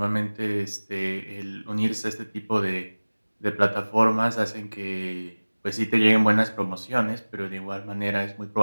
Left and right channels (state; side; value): inverted; both; correlation -1.00